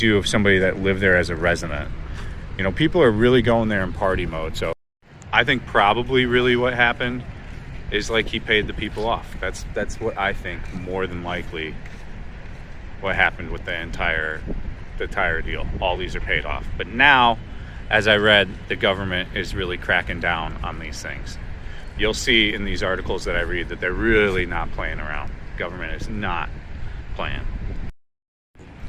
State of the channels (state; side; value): identical; both; correlation 1.00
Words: if somebody that lived there as a resident. People are really going there in party mode. So I think probably really what happened is like he paid the people off. That's what I think more than likely what happened with the entire deal. All these are paid off. But now, as I read, the government is really cracking down on these things. You'll see in these articles that I read that they're really not playing around. Government is not playing.